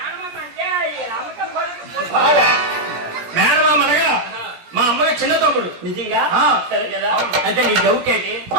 అంటే మేనమామ అనగా మా అమ్మకి చిన్న తమ్ముడు నిజంగా సరే కదా అయితే నీ డౌట్ ఏంటి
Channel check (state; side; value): late; left; 17 ms